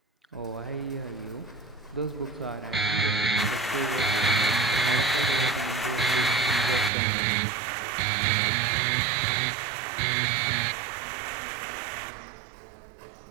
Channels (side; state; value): left; drops out; at 6.9 s